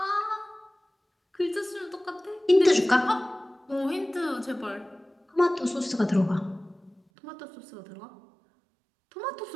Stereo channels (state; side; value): drops out; left; at 7.0 s